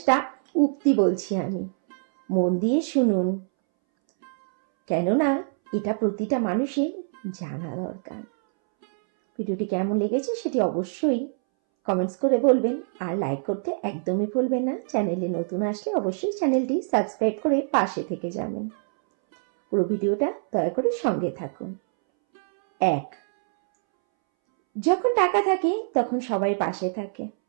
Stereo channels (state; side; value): silent; left; 62 dB below the other